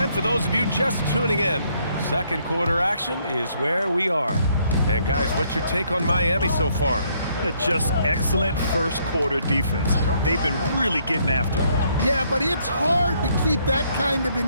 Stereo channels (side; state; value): both; inverted; correlation -0.69